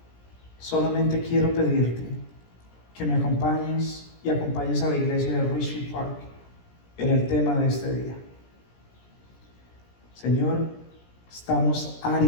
Solamente quiero pedirte que me acompañes y acompañes a la iglesia de Richfield Park en el tema de este día. Señor, estamos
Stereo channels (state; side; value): late; right; 17 ms